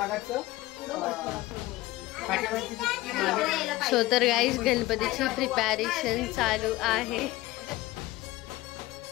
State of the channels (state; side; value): quieter; right; 18.4 dB